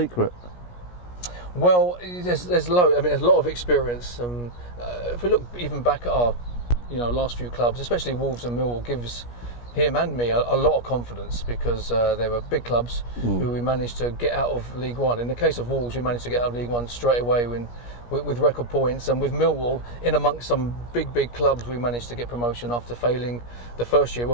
Well, there's a lot of experience. If we look even back at our last few clubs, especially Wolves and Millwall, gives him and me a lot of confidence because they were big clubs who we managed to get out of League One. In the case of Wolves, we managed to get out of League One straight away with record points, and with Millwall, in amongst some big clubs, we managed to get promotion after failing the first year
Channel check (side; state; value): right; late; 17 ms